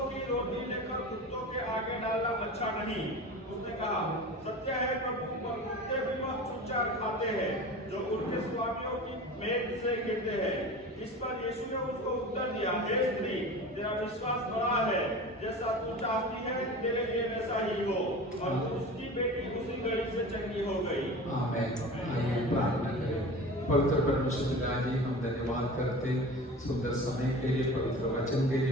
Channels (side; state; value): both; normal; correlation 0.34